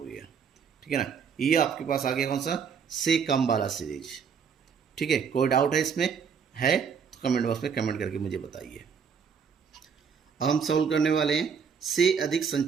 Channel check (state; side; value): quieter; left; 6.6 dB